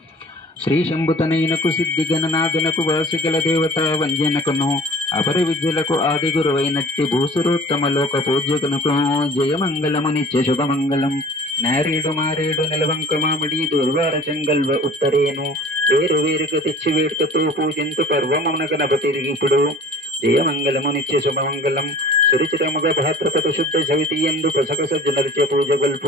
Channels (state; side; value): normal; both; correlation 0.46